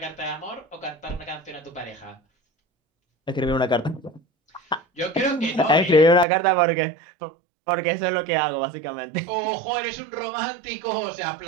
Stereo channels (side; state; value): left; drops out; at 6.2 s